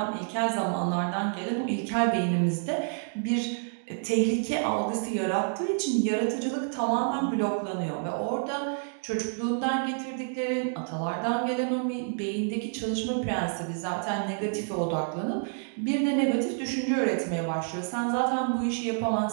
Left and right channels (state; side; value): silent; left; 59 dB below the other